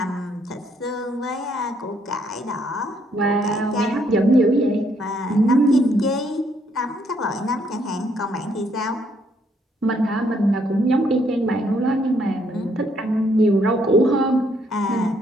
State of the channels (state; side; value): normal; both; correlation 0.70